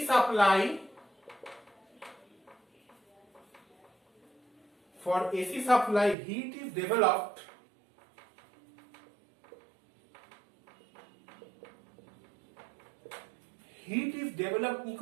supply, for AC supply heat is developed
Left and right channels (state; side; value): drops out; left; at 6.2 s